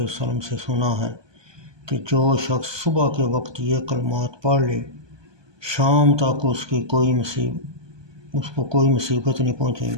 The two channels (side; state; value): left; late; 1.2 ms